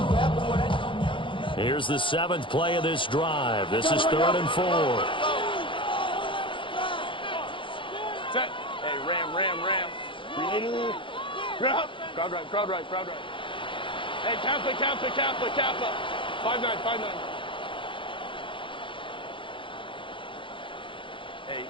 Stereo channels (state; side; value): late; right; 0.25 ms